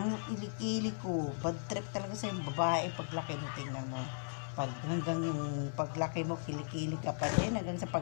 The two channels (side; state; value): right; silent; digital silence